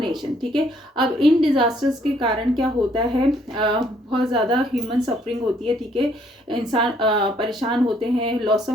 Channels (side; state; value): both; normal; correlation 0.66